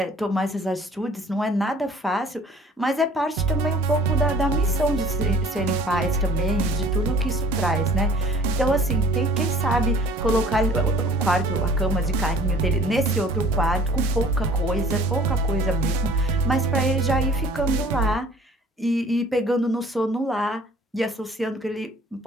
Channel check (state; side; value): normal; both; correlation 0.51